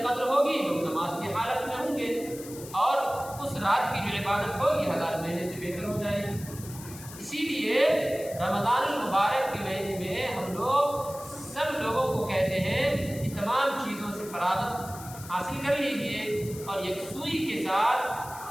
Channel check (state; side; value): noise; left; hiss, 15 dB below the sound